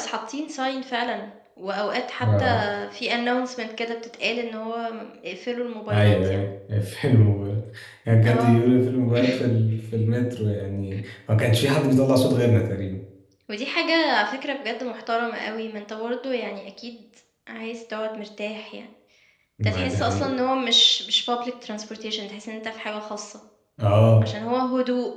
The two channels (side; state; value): both; identical; correlation 1.00